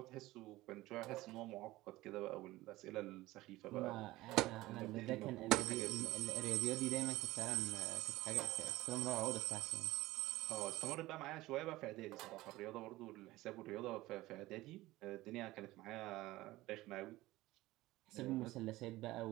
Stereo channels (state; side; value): quieter; left; 18.1 dB